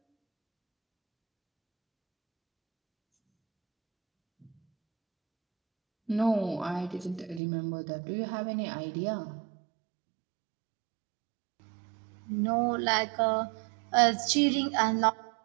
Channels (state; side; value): drops out; left; at 7.4 s